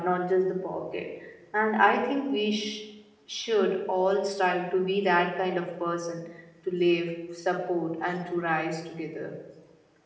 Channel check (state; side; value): identical; both; correlation 1.00